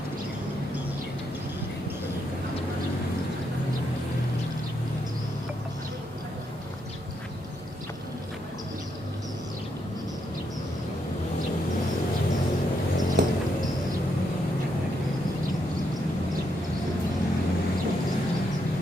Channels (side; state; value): both; normal; correlation 0.78